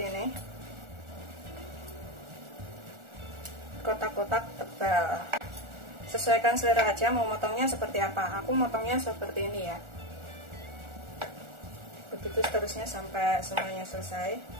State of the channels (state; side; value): late; left; 1.4 ms